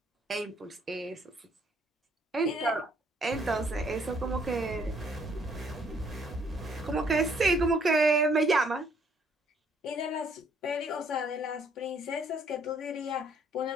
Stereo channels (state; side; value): normal; both; correlation 0.66